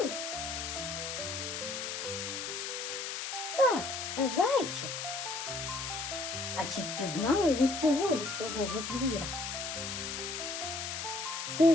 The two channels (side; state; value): left; noise; hiss, 4 dB below the sound